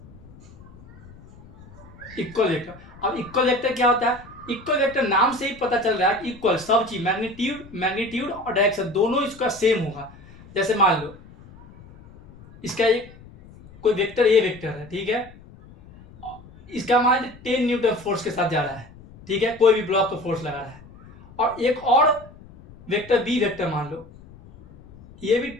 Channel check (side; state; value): left; noise; rumble, 21 dB below the sound